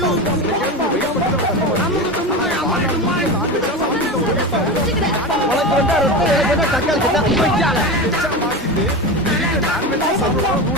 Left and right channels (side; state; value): both; normal; correlation 0.23